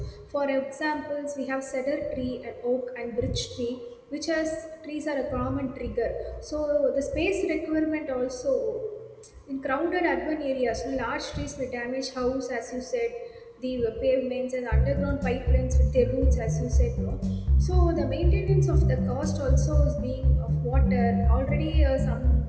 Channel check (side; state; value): both; identical; correlation 1.00